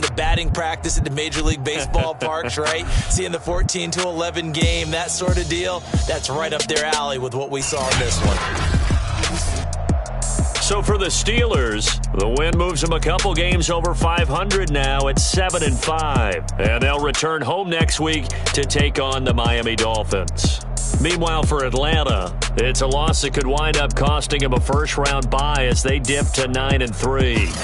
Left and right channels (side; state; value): both; identical; correlation 1.00